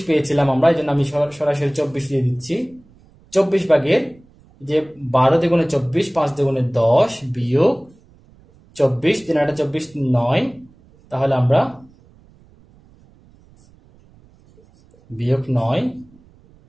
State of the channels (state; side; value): noise; right; rumble, 29 dB below the sound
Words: পেয়েছিলাম আমরা, এই জন্য আমি সরাসরি 24 দিয়ে দিচ্ছি। 24 যে 12 দ্বিগুণে 24, 5 দ্বিগুণে 10 বিয়োগ 24, 3 8 24, 9, তাহলে আমরা বিয়োগ 9